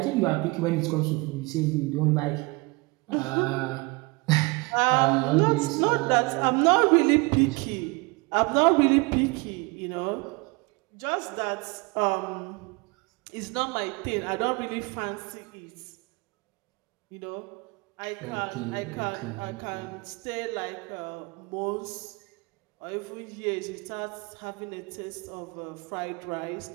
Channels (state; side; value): quieter; left; 26.6 dB